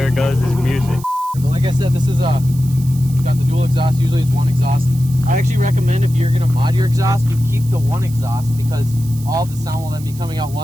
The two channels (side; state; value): right; noise; hiss, 19 dB below the sound